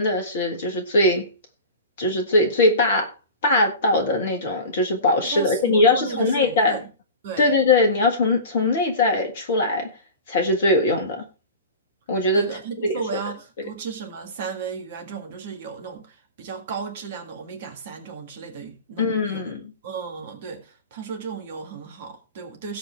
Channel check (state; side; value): inverted; both; correlation -0.34